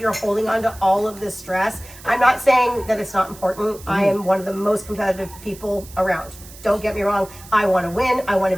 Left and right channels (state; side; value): noise; right; hiss, 19 dB below the sound